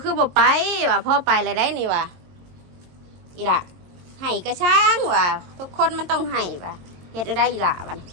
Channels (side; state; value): left; late; 22 ms